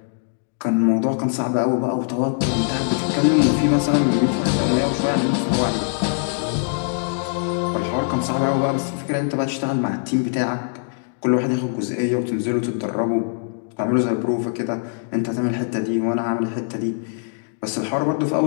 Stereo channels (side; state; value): right; silent; digital silence